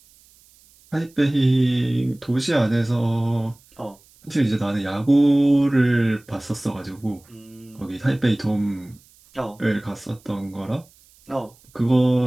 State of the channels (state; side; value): noise; right; hiss, 29 dB below the sound